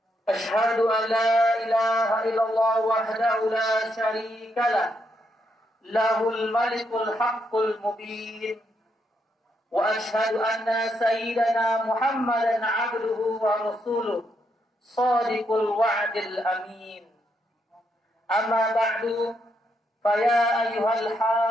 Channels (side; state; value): both; normal; correlation 0.78